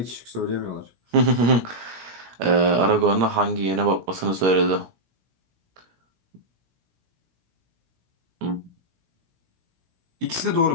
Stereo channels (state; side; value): late; left; 17 ms